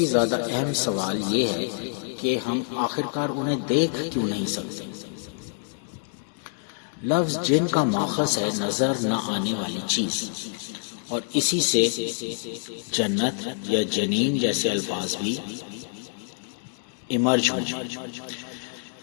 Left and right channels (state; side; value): silent; right; digital silence